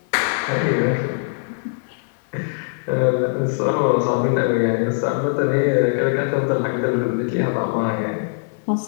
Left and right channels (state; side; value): silent; right; 65 dB below the other